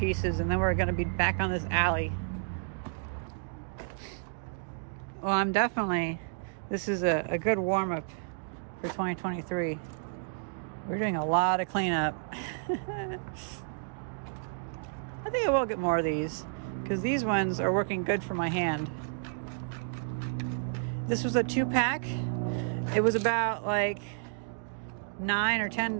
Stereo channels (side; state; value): left; silent; digital silence